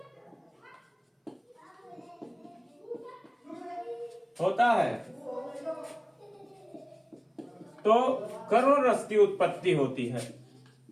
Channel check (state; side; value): identical; both; correlation 1.00